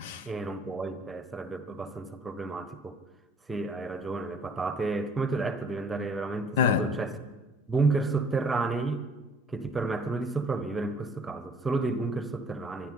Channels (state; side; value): normal; both; correlation 0.56